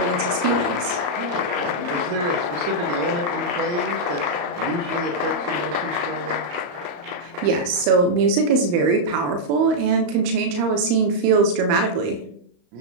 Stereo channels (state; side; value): late; left; 35 ms